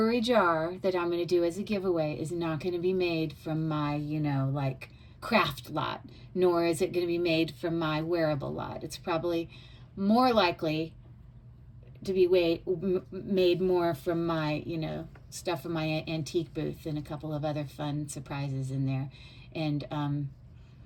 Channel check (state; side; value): identical; both; correlation 1.00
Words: jar that I'm going to do as a giveaway is not going to be made from my, you know, like craft lot, nor is it going to be made from my wearable lot. It's probably more likely to be made more from my, you know, stuff from my antique booth and a couple of other fun surprises in there. And,